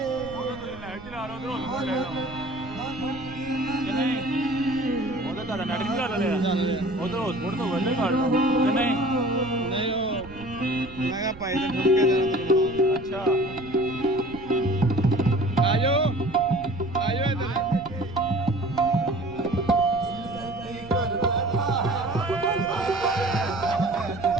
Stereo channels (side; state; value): right; noise; rumble, 17 dB below the sound